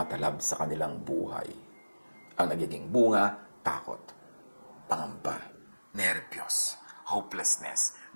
sa kanilang buhay. Ang nagiging bunga, takot, pangamba, nervyos, hopelessness,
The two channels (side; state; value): both; inverted; correlation -1.00